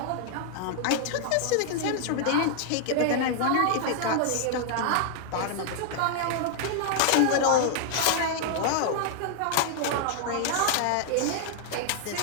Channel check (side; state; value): both; different; correlation 0.00